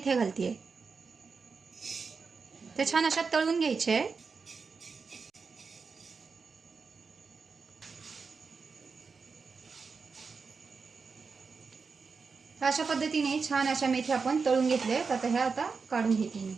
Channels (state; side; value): quieter; left; 5.0 dB